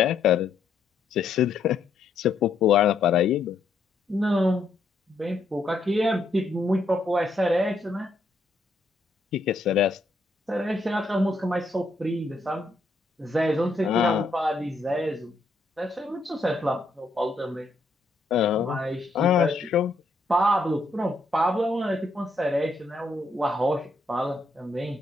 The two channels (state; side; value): quieter; right; 3.0 dB